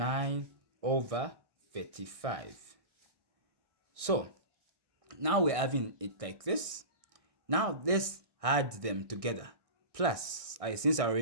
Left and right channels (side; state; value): left; late; 1.6 ms